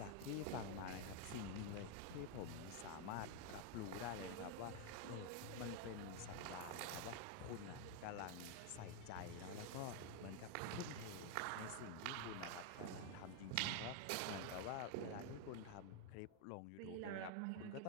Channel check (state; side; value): different; both; correlation 0.01